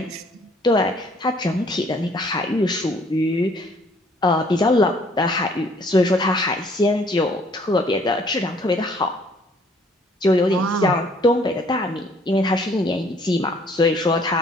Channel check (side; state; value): both; normal; correlation 0.61